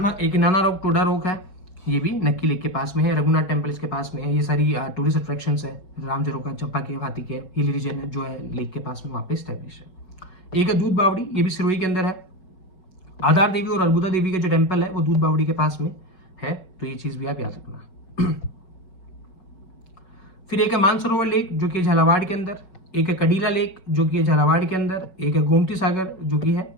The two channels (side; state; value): right; late; 5.4 ms